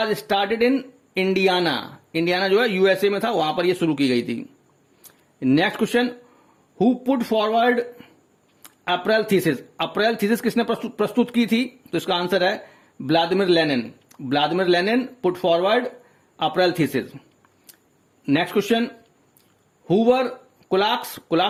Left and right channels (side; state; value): both; identical; correlation 1.00